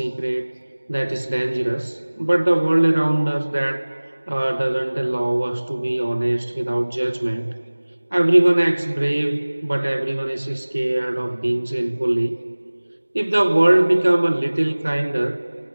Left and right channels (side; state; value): both; inverted; correlation -1.00